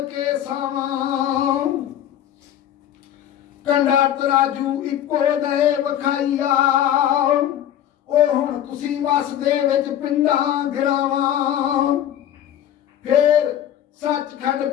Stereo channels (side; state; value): right; quieter; 11.1 dB